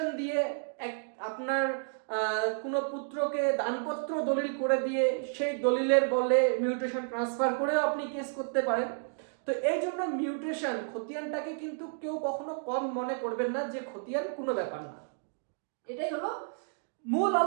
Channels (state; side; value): silent; left; digital silence